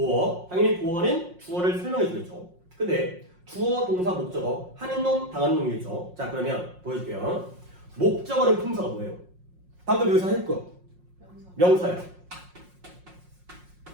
당연히 보어는 주어를 설명해 주겠죠. 근데 주어, 동사, 목적어. 하는 놈, 당하는 놈이겠죠. 자, 그러면 보여줄게요. 목적어는 품사가 뭐예요? 방금 여기서 할 거. 명사예요.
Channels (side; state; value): left; late; 5.5 ms